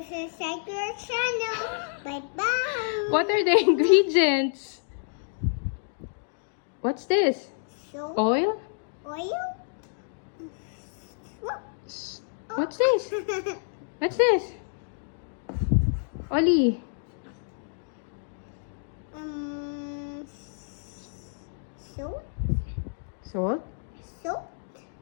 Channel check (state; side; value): silent; right; digital silence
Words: to subscribe to our channel. Bye-bye. What are the ingredients? What's this? Soap, Oil? oil. What's this? What's this? Oli. Soap, Salt. soap,